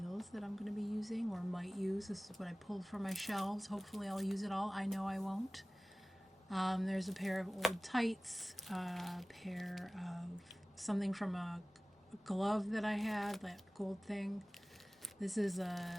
that I'm going to be using or might use. This is what I pulled from my shelves. Hopefully I'll use it all. I know I won't. There's a pair of old tights, a pair of something from a glove that I had, that gold thing. This is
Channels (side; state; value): both; normal; correlation 0.98